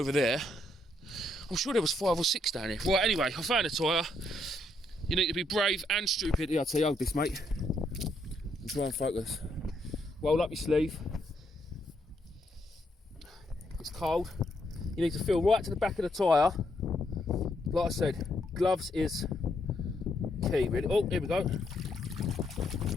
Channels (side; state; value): both; normal; correlation 0.74